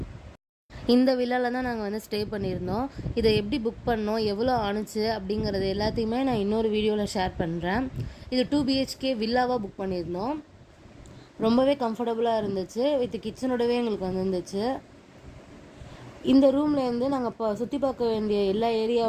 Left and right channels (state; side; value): identical; both; correlation 1.00